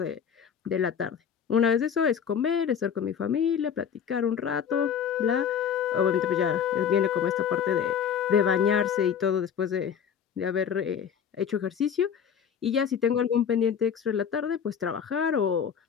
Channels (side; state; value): right; quieter; 7.8 dB